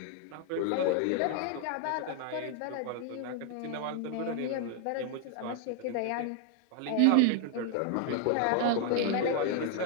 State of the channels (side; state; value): both; different; correlation 0.00